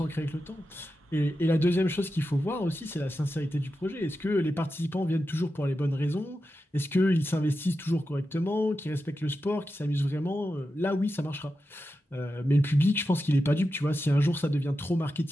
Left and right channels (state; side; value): normal; both; correlation 0.90